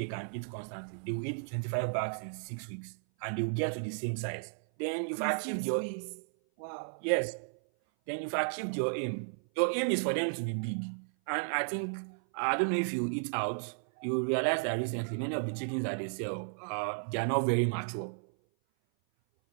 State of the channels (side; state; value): left; silent; 55 dB below the other